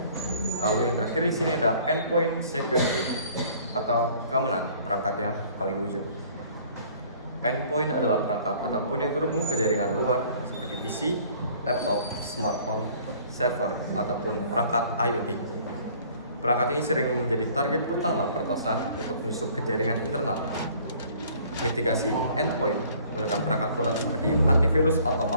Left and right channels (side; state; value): both; inverted; correlation -0.55